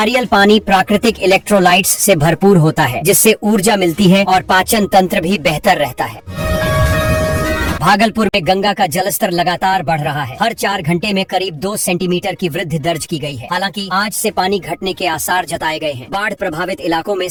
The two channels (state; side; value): identical; both; correlation 1.00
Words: पानी प्राकृतिक इलेक्ट्रोलाइट्स से भरपूर होता है, जिससे ऊर्जा मिलती है और पाचन तंत्र भी बेहतर रहता है। भागलपुर में गंगा का जलस्तर लगातार बढ़ रहा है। हर 4 घंटे में करीब 2 सेंटीमीटर की वृद्धि दर्ज की गई है। हालांकि आज से पानी घटने के आसार जताए गए हैं। बाढ़ प्रभावित इलाकों में